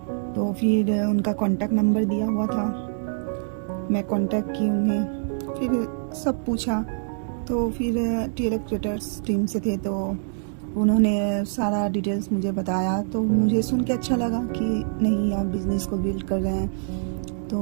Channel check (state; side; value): silent; left; digital silence